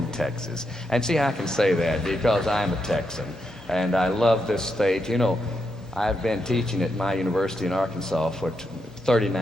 Texas. And see, I can say that because I'm a Texan, and I love this state. You know, I've been teaching at my university in Arkansas for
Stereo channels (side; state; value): both; normal; correlation 0.83